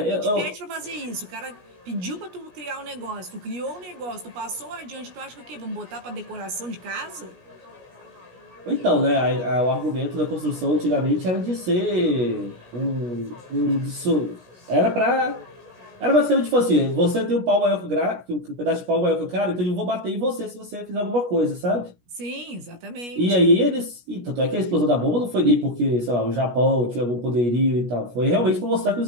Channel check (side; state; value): left; late; 17 ms